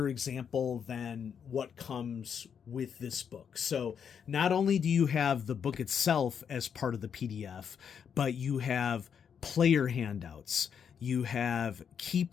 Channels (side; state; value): right; quieter; 7.4 dB